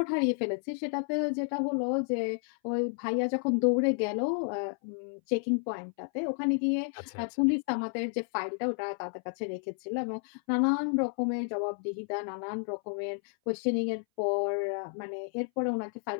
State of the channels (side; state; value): right; silent; 57 dB below the other